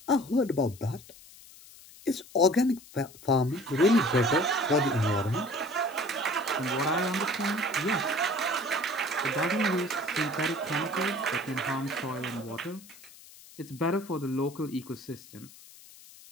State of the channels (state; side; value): noise; left; hiss, 21 dB below the sound